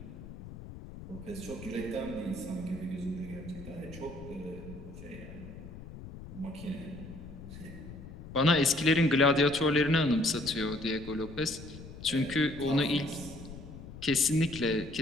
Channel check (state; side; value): noise; left; rumble, 13 dB below the sound